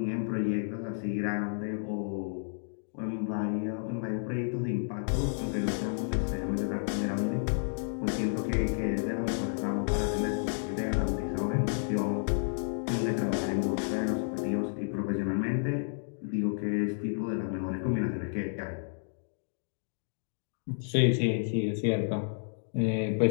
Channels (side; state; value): right; silent; digital silence